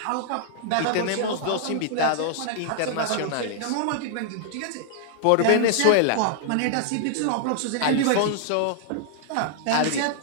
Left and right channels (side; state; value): both; different; correlation -0.01